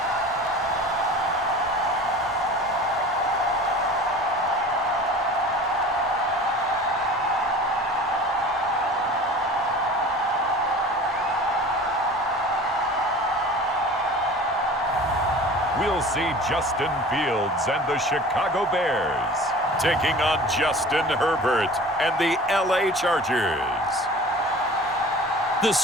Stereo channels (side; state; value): both; normal; correlation 0.41